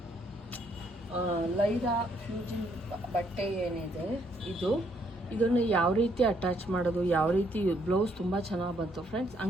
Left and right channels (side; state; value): both; normal; correlation 0.70